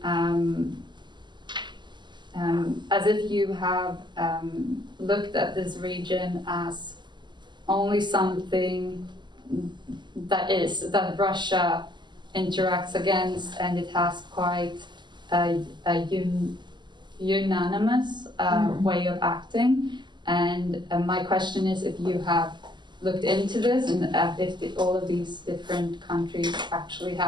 as if you have looked at this region as only something that Russia interacts against, and it has quite a unanimous way of acting. And my question is if you have looked into this, and if all of these different countries actually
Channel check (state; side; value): late; left; 0.21 ms